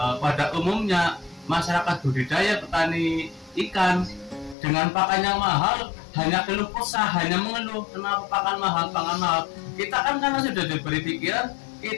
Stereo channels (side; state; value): right; drops out; at 4.5 s